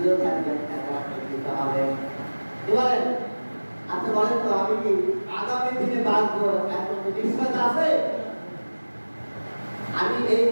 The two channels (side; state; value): both; inverted; correlation -1.00